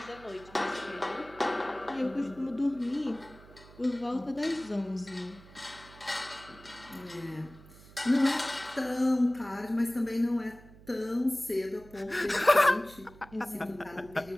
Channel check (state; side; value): noise; right; hum, 21 dB below the sound